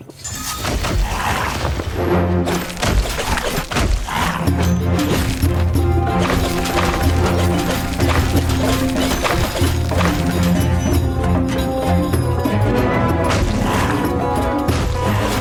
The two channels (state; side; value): identical; both; correlation 1.00